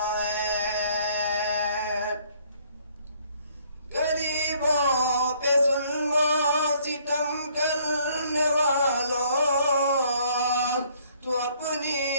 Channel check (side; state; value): both; inverted; correlation -0.62